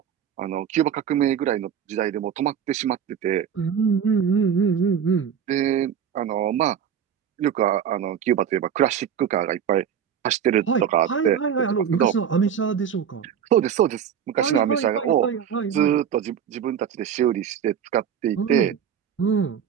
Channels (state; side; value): quieter; left; 8.3 dB